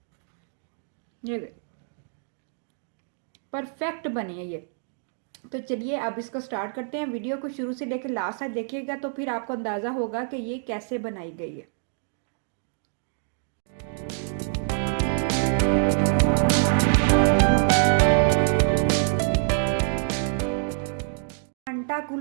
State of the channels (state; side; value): silent; left; digital silence